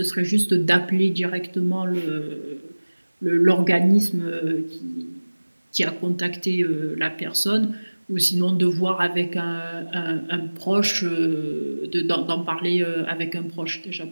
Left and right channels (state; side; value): inverted; both; correlation -1.00